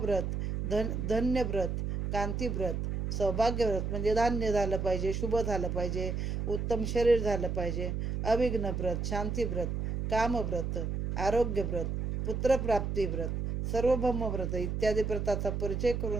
धन्यव्रत, कांतीव्रत, सौभाग्यव्रत म्हणजे धान्य झालं पाहिजे, शुभ झालं पाहिजे, उत्तम शरीर झालं पाहिजे, अविघ्न व्रत, शांतीव्रत, कामव्रत, आरोग्यव्रत, पुत्रप्राप्तीव्रत, सार्वभौम व्रत इत्यादी व्रताचा परिचय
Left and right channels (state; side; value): noise; right; hum, 2 dB below the sound